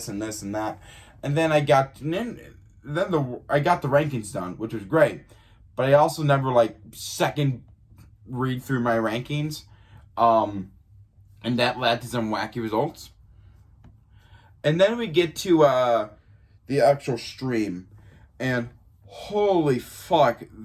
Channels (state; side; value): identical; both; correlation 1.00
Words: and this and that. And then I got the rankings done, which was great. But I also never second read through my rankings. And that led to some wacky results. And then we get to the actual stream. And holy fuck,